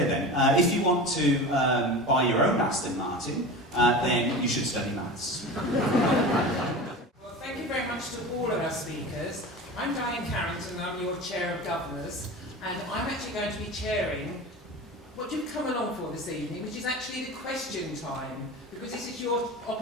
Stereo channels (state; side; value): normal; both; correlation 0.31